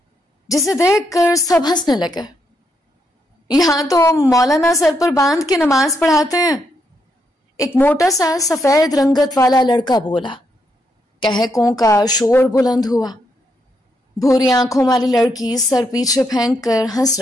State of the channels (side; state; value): both; normal; correlation 0.78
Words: جسے دیکھ کر سب ہنسنے لگے. یہاں تو مولانا سر پر باندھ کے نماز پڑھاتے ہیں، ایک موٹا سا سفید رنگت والا لڑکا بولا. کہکوں کا شور بلند ہوا. بھوری آنکھوں والی لڑکی سر پیچھے پھینک کر ہنس